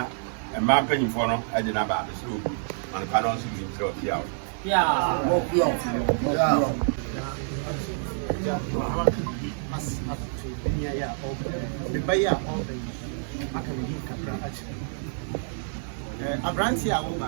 mmaa mpanyimfoɔ no ɛde no aba mesrɛ obu manepa no nso bi mesrɛ wɔ pia o abranti a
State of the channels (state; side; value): silent; left; 57 dB below the other